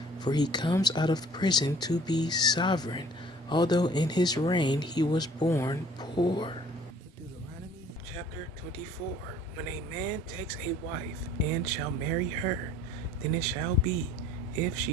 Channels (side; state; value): both; normal; correlation 0.53